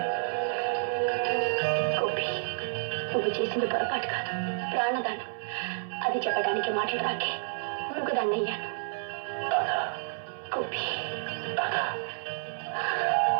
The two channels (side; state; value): left; silent; digital silence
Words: నువ్వు చేసింది పొరపాటు కాదు, ప్రాణదానం. అది చెప్పడానికి మాటలు రాకే మూగదాన్ని అయ్యాను.